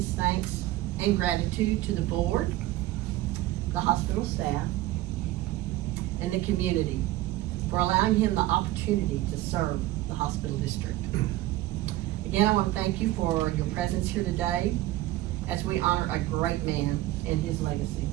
thanks and gratitude to the board, the hospital staff, and the community for allowing him the opportunity to serve the hospital district. Again, I want to thank you for your presence here today as we honor a great man and his legacy.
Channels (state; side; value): quieter; left; 16.2 dB